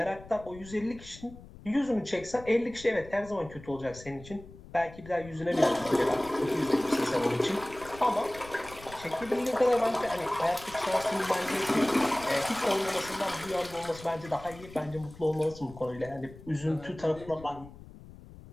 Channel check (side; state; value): left; noise; rumble, 18 dB below the sound